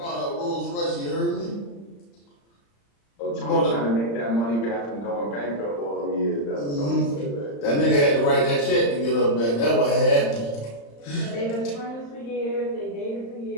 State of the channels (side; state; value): right; late; 35 ms